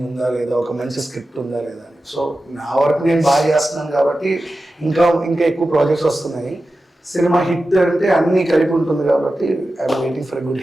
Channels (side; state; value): both; normal; correlation 0.93